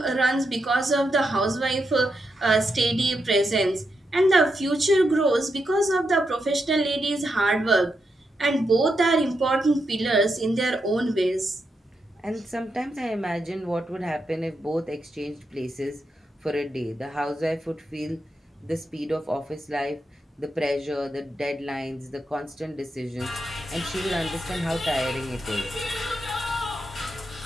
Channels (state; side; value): normal; both; correlation 0.84